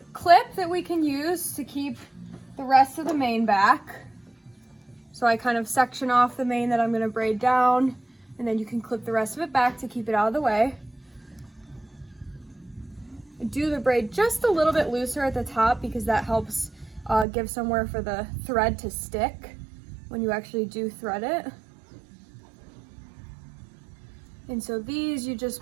clip that we can use to keep the rest of the mane back. So I kind of section off the mane that I'm going to braid down, and then you can clip the rest of it back to keep it out of the way. Do the braid just a little bit looser at the top because that helps give somewhere for the thread to stick when you actually do thread it. And so these you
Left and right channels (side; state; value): left; drops out; at 17.2 s